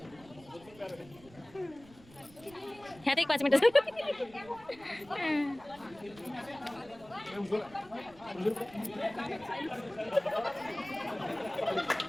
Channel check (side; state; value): right; noise; rumble, 23 dB below the sound